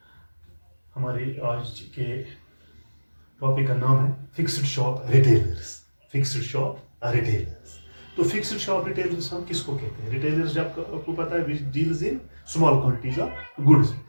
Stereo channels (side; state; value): both; inverted; correlation -1.00